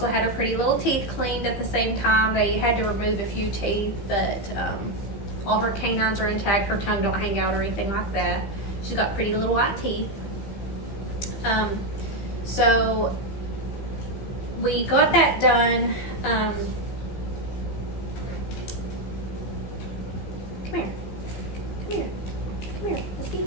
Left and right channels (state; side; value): late; right; 15 ms